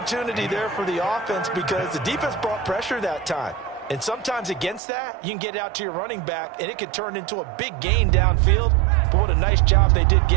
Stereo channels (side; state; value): left; drops out; at 4.8 s